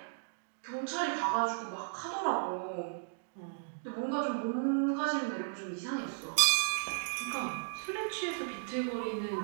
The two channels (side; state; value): left; silent; digital silence